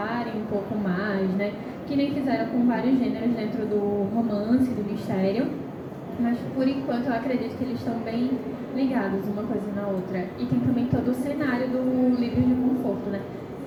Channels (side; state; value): both; identical; correlation 1.00